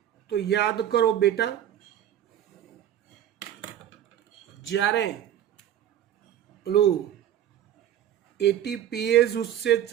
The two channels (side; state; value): left; quieter; 10.8 dB